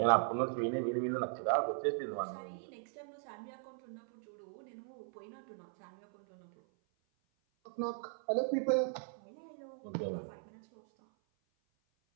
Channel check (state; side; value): silent; left; 52 dB below the other